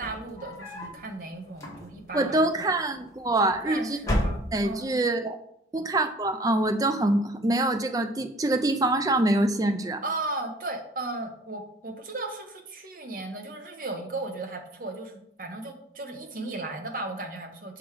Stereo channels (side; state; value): both; normal; correlation 0.49